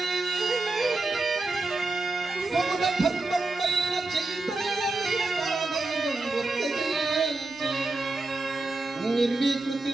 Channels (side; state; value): left; quieter; 3.2 dB